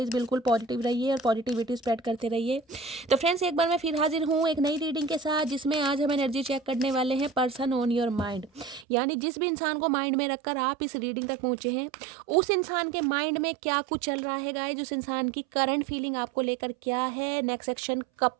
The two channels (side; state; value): left; drops out; at 8.8 s